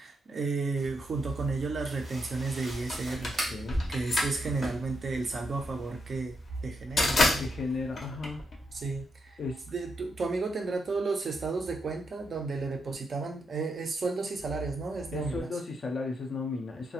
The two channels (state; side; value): normal; both; correlation 0.81